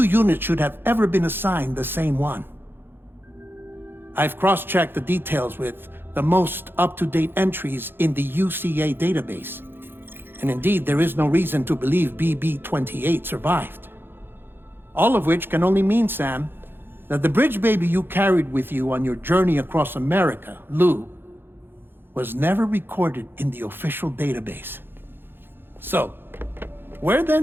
units should have ever been assigned the same one. I've cross-checked the details with the most up-to-date entries in the UCA database. And indeed, there is no reason to believe BB-28 survived. All of which can only mean, Sam, that the bridge baby you carried with you on your journey across America, Lou, was never recorded in the official database. So, where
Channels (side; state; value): left; late; 0.10 ms